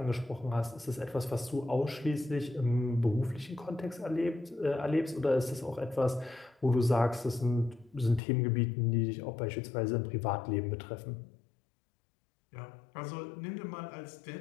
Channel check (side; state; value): right; drops out; at 8.2 s